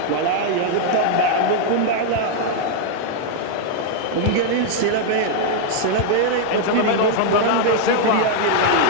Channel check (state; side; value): different; both; correlation 0.00